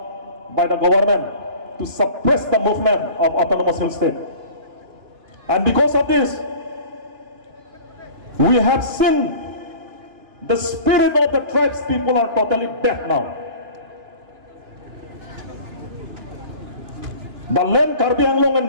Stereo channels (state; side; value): late; left; 2.5 ms